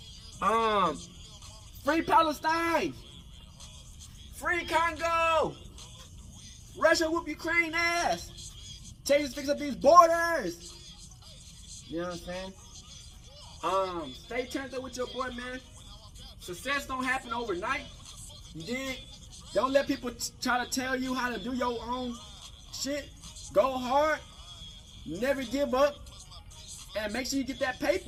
Free Palestine. Free Congo. Russia whoop Ukraine ass. Change fix up these borders. You know what I'm saying? Stay turned up with your boy, man. Success don't happen overnight. You dig? Don't let people try to tell you how to do your own shit. Go hard. Never give up. And make sure you get that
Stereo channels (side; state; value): both; identical; correlation 1.00